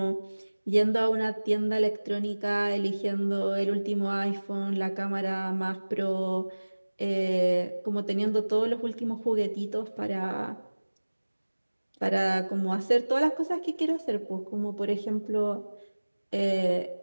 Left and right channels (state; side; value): inverted; both; correlation -1.00